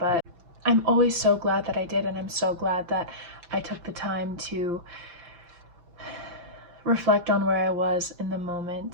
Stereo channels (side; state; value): left; late; 5.8 ms